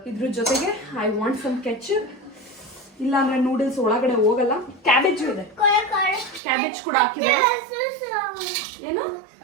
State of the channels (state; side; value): drops out; left; at 6.4 s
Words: ಇದ್ರ ಜೊತೆಗೆ ಐ ವಾಂಟ್ ಸಮ್ ಕೆಚಪ್, ಇಲ್ಲ ಅಂದ್ರೆ ನೂಡಲ್ಸ್ ಒಳಗಡೆ ಹೋಗಲ್ಲ. ಕ್ಯಾಬೇಜ್ ಇದೆ, ಕ್ಯಾಬೇಜ್ ಕೂಡ ಹಾಕಿದೆ. ಏನು